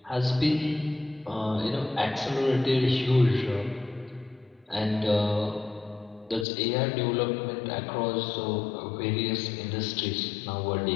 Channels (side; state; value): right; drops out; at 6.5 s